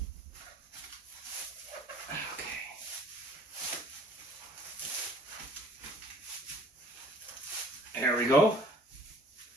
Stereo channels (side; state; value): both; normal; correlation 0.53